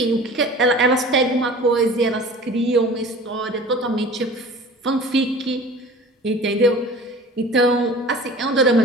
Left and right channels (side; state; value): both; normal; correlation 0.42